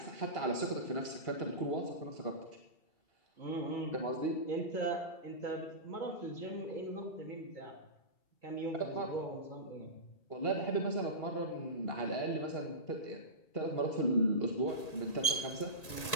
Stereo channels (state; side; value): late; right; 1.8 ms